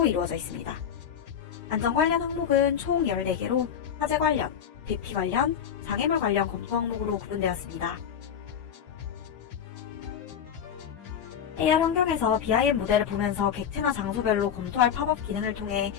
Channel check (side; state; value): right; quieter; 8.3 dB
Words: 이루어져 있습니다. 안전 관련 항목은 총 14개로 화재 관련, 대피 관련, 장애물 관련 검토 항목으로 구분되었습니다. AR 환경에서 BIM 모델을 보면서 객체나 장소별로 검토할 팝업 기능을 통해